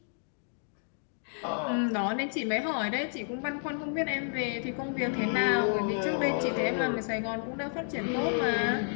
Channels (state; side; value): silent; right; digital silence